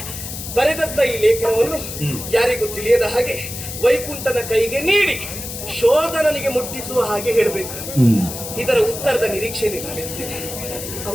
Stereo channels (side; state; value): left; noise; hiss, 8 dB below the sound